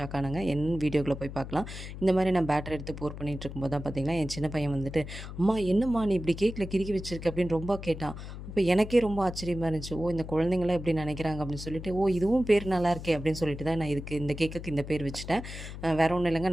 ஆனேங்க. என்ன வீடியோக்குள்ளே போய் பார்க்கலாம். இந்த மாதிரி நான் பேட்டர் எடுத்து போர் பண்ணிகிட்டு இருக்கும்போது தான் பார்த்திங்கன்னா என் சின்ன பையன் வந்துட்டு, அம்மா என்னம்மா நீ இப்படி கேக்கில் கிறுக்கி வச்சிருக்க அப்படின்னு ரொம்ப கேட்டான். அப்போ எனக்கே ரொம்ப ஆச்சரியமாக இருந்துச்சு. ஓ, இந்த குழந்தைங்களாம் எப்படி நினைக்கிறாங்க அப்படின்னு சொல்லிட்டு, ஓ இதுவும் பேர் நல்லா இருக்கே அப்படின்னு சொல்லிட்டு தான் நான் இந்த கேக்குக்கு இந்த பேர் வச்சுட்டேன். வேறு ஒன்றும் இல்லைங்க,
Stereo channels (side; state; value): left; noise; hum, 10 dB below the sound